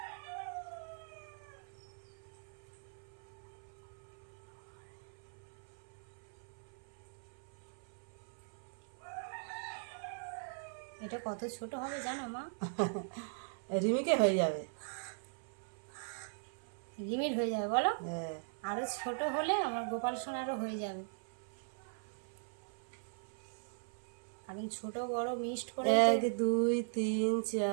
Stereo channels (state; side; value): silent; left; 51 dB below the other